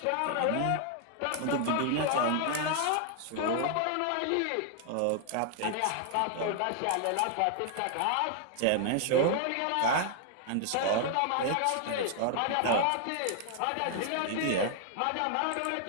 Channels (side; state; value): both; different; correlation 0.00